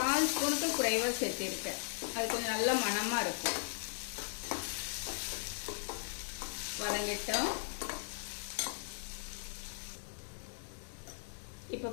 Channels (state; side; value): silent; right; digital silence